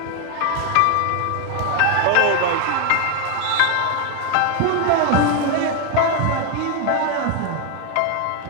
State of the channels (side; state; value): both; different; correlation 0.01